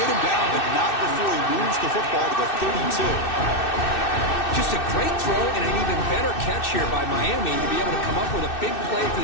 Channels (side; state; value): right; late; 2.6 ms